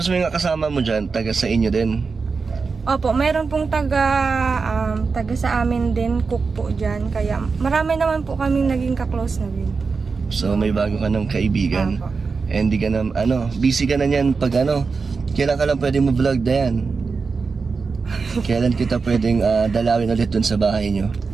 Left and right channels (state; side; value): quieter; left; 4.8 dB